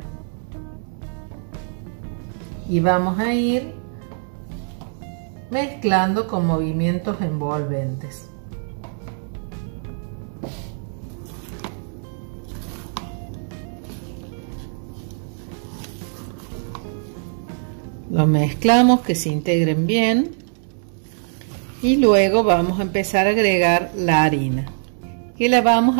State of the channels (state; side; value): silent; left; 62 dB below the other